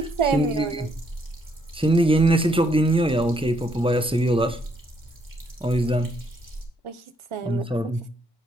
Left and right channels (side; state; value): both; normal; correlation 0.72